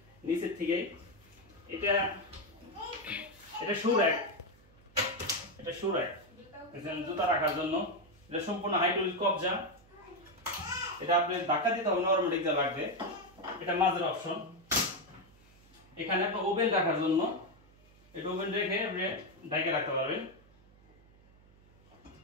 নিচের থেকে। এটা শু র‍্যাক, এটা শু র‍্যাক, জুতা রাখার জন্য। এটা সম্পূর্ণ হাইড্রোলিক কবজা, এটা আপনি ধাক্কা দিতে হবে না, অটোমেটিক যা লাগবে। এটা মাঝের অপশন। এখানে একটা ওভেন রাখার জন্য, এটা ওভেন রেখে আপনি ঢাকে রাখতে পারবেন।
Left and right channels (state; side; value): noise; right; hum, 27 dB below the sound